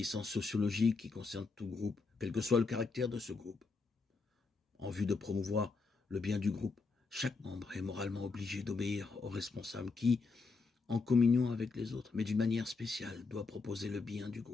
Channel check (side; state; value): right; quieter; 4.3 dB